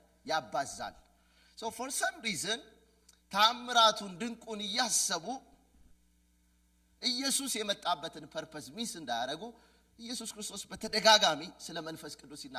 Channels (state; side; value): identical; both; correlation 1.00